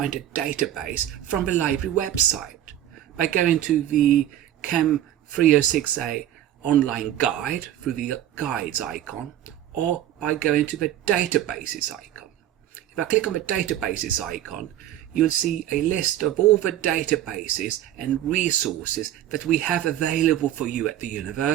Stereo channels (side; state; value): left; quieter; 12.2 dB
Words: database from the library website by going to the Chem 306A online guide through the guides icon, or by going to the databases icon. If I click on the databases icon, you'll see a list of all the databases and resources that we have available for you at the